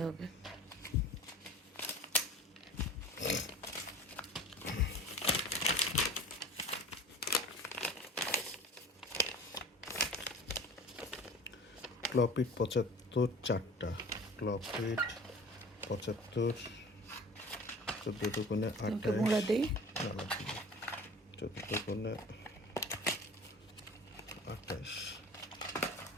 হবে। ক্লপিট ৭৫ 4টা, ক্লপিট ৭৫, ১৪ দুগুণে তোমাকে ২৮, মোড়া দেই। না লাগবে না, ১৪ দুগুণে ২৮,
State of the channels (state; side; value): normal; both; correlation 0.41